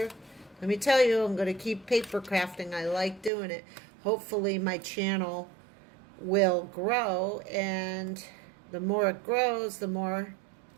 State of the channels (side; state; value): left; drops out; at 3.3 s